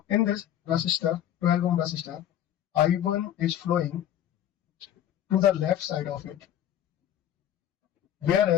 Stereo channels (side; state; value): right; quieter; 11.0 dB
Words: in this resistor, 12 ohm resistor, I1 is flowing to the left side of it,